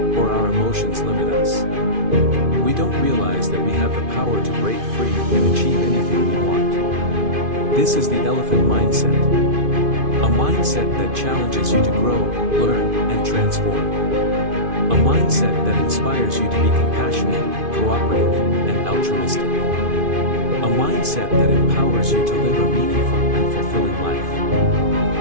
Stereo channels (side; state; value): left; late; 2.5 ms